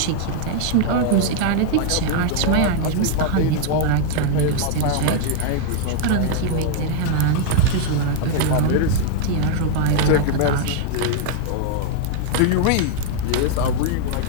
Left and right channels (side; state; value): both; different; correlation 0.00